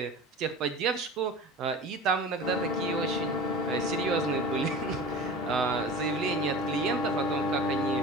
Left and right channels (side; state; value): both; normal; correlation 0.36